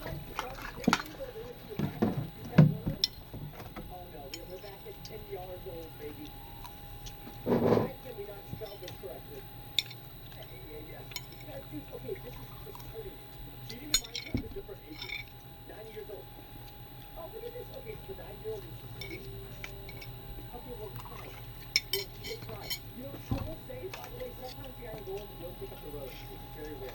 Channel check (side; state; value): both; identical; correlation 1.00